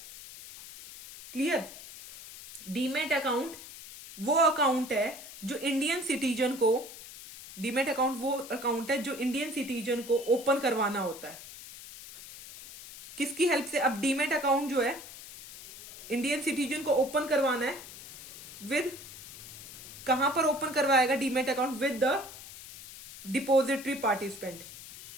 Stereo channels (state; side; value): noise; left; hiss, 14 dB below the sound